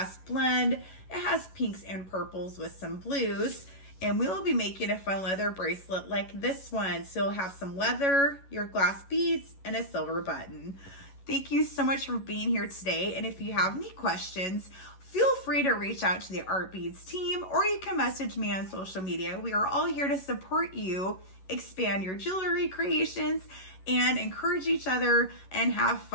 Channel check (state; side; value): late; right; 11 ms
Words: blend. It has pinks and purples with some blues. And we will be making a fun leather bracelet like this one. So you'll have some leather, your glass beads, and a silver button. Thank you so much for being here today. And if you have any questions, feel free to reach out to the Art Beads team, or you can message me on social media. We are all here to support you, expand your jewelry creations, and encourage each other and have